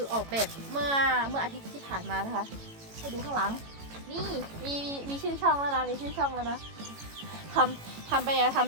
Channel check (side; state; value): left; late; 18 ms